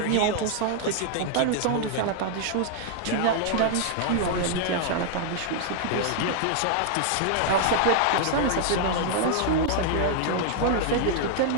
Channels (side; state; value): both; different; correlation 0.00